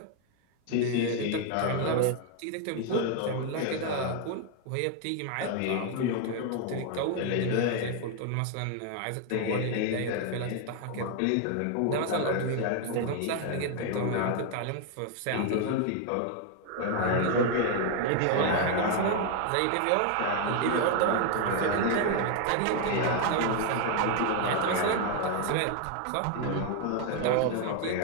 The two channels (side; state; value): both; different; correlation 0.00